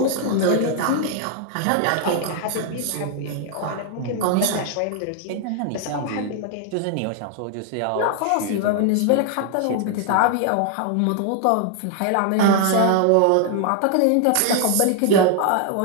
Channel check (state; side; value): different; both; correlation 0.00